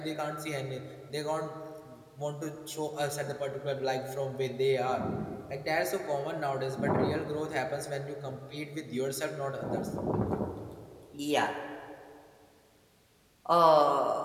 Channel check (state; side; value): identical; both; correlation 1.00